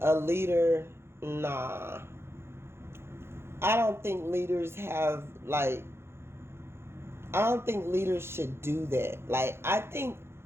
a leader, nah. I don't think leaders have, like, I don't think leaders should do that. Like, I think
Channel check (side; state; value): left; late; 0.12 ms